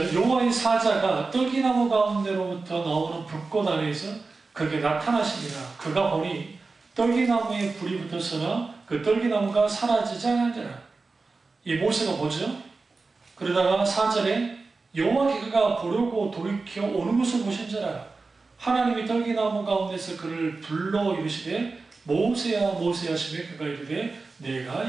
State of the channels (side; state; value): left; quieter; 3.9 dB